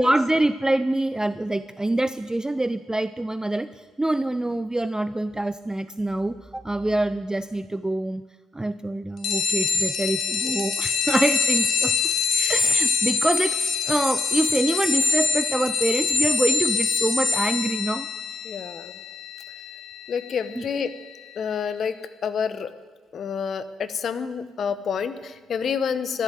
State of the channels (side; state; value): both; normal; correlation 0.87